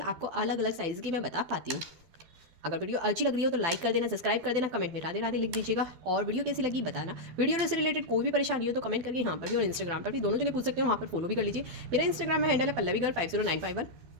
अलग अलग साइज़ की मैं बता पाती हूँ। अगर वीडियो अच्छी लग रही हो तो लाइक कर देना, सब्सक्राइब कर देना, कमेंट में राधे राधे लिख दीजिएगा, और वीडियो कैसी लगी बताना। वीडियो से रिलेटेड कोई भी परेशानी हो तो कमेंट करके यहाँ पर भी और इंस्टाग्राम पर भी, दोनों जगह पूछ सकते हो, वहाँ पर फॉलो भी कर लीजिए। मेरा इंस्टाग्राम में हैंडल है पल्लवीगर 50951,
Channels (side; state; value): left; late; 12 ms